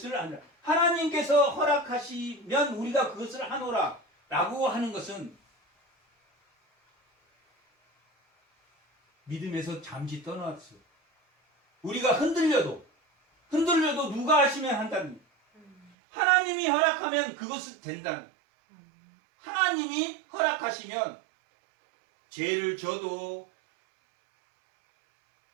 하노라. 하나님께서 허락하시면 우리가 그것을 하노라 라고 하는 것은 믿음에서 잠시 떠나왔어요. 우리가 흔들려도 누가 하시면 한다는, 하나님이 허락하면 그것은 된다는, 하나님이 허락하시면 죄를 져도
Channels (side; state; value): left; drops out; at 15.9 s